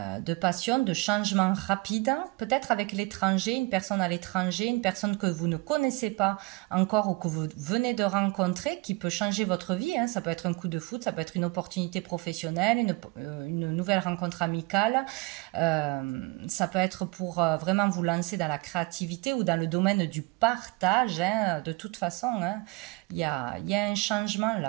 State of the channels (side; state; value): left; quieter; 23.5 dB